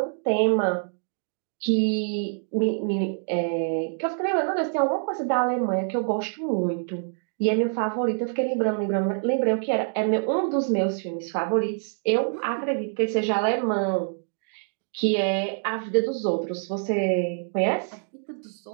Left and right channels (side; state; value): left; silent; digital silence